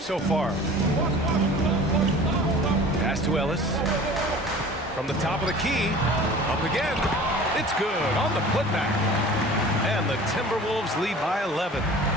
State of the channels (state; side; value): normal; both; correlation 0.43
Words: so far. Pass to Ellis. From the top of the key, up again. It's good on the putback. And the Timberwolves lead by 11.